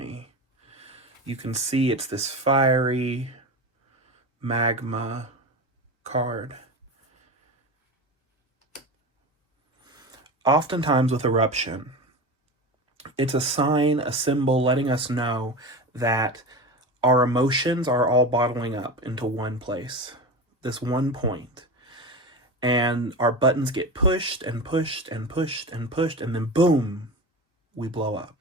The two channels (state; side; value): normal; both; correlation 0.26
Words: You can see it's this fiery magma card. Oftentimes with Eruption, it's a sign, a symbol letting us know that our emotions are all bottling up into one place, this one point. And our buttons get pushed and pushed and pushed and pushed, and then boom, we blow up.